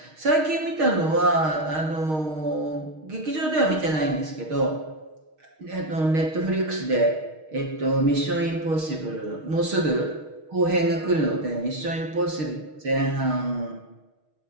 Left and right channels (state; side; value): late; left; 6.4 ms